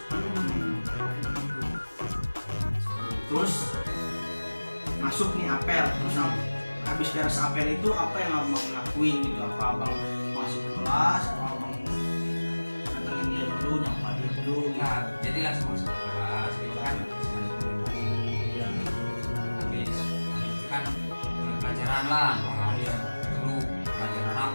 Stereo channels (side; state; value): both; inverted; correlation -1.00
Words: Terus masuk nih apel. Terus habis beres apel itu apa yang abang lakuin gitu? Apa abang masuk ke kelas? Apa abang datengin dia dulu, nyapa dia dulu? Nah, jadi langsung masuk ke kelas gitu kan. Iya. Habis itu kan mulai pelajaran lah. Iya. Dulu pelajaran